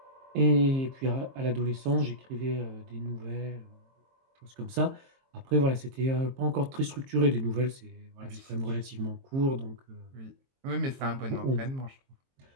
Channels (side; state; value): left; late; 22 ms